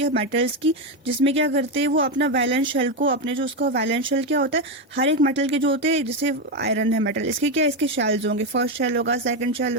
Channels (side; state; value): both; normal; correlation 0.09